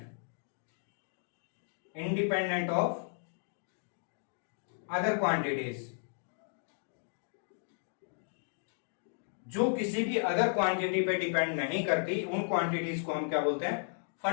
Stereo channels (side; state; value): right; silent; digital silence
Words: इंडिपेंडेंट ऑफ अदर क्वांटिटीज, जो किसी भी अदर क्वांटिटी पे डिपेंड नहीं करती, उन क्वांटिटीज को हम क्या बोलते हैं,